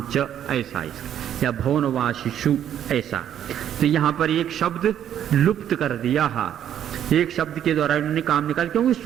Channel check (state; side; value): quieter; left; 10.2 dB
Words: च, ऐसा या भवनवासीषु ऐसा। तो यहाँ पर एक शब्द लुप्त कर दिया है, एक शब्द के द्वारा उन्होंने काम निकाल, क्योंकि